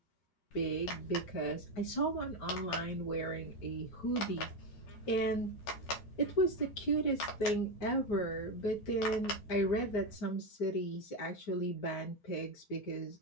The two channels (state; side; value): late; right; 13 ms